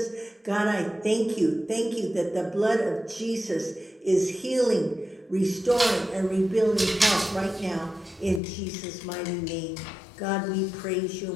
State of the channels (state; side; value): drops out; right; at 8.4 s